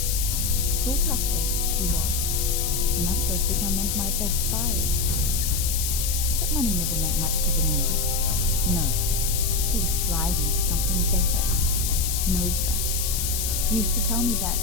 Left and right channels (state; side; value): noise; left; hiss, 1 dB below the sound